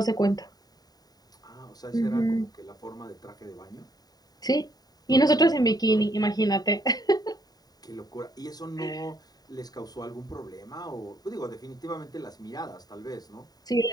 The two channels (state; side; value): late; right; 0.19 ms